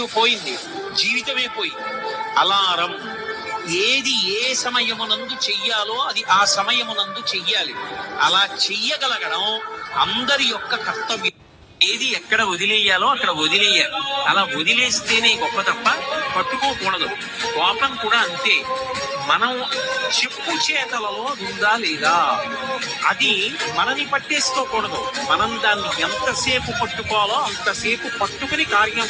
పోయింది, జీవితమే పోయింది. అలారం ఏది ఏ సమయమునందు చెయ్యాలో అది ఆ సమయమునందు చెయ్యాలి. అలా చెయ్యగలగడం అందరి యొక్క కర్తవ్యం. ఏది ఎక్కడ వదిలేయాలో అక్కడ వదిలేయాలి. అలా వదిలేస్తేనే గొప్ప తప్ప పట్టుకోకూడదు. కోపం కూడా అంతే. మనం చెప్పు చేతలలో ఉందా లేదా, అది మనని పట్టేసుకోకూడదు. మనం దాన్ని ఎంతసేపు పట్టుకోవాలో అంతసేపు పట్టుకుని కార్యం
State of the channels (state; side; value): identical; both; correlation 1.00